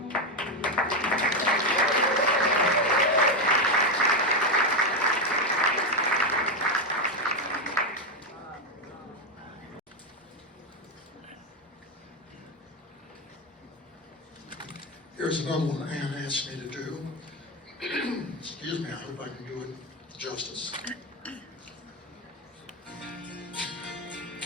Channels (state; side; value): normal; both; correlation 0.09